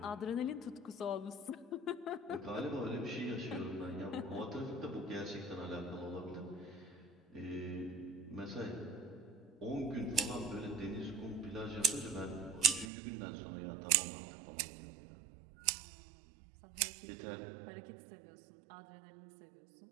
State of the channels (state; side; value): drops out; left; at 12.9 s